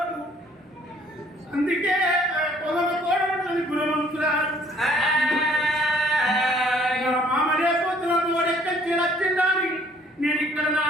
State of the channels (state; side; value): normal; both; correlation 0.59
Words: అందుకే పొగల కోడలు గుణవంతురాలు. మామలే పోతున్న తోడెక్కడికి వచ్చిండాలి. నేను ఇక్కడ నా